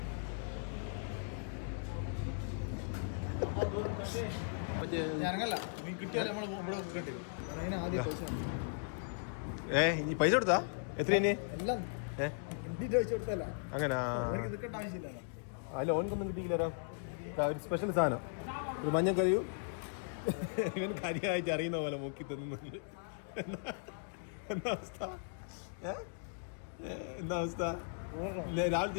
ഇനി പൈസ കൊടുത്താ എത്ര? അങ്ങനെ അല്ല, ഓനക്കൊന്നും കിട്ടിയില്ല. ഒരു സ്പെഷ്യൽ സാധനം, ഒരു മഞ്ഞക്കറിയും ഇവൻ കാര്യമായിട്ട് അറിയുന്ന പോലെ മുക്കി തന്നുന്നുണ്ട്. എന്താ അവസ്ഥ? രാവിലെ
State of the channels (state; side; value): silent; right; digital silence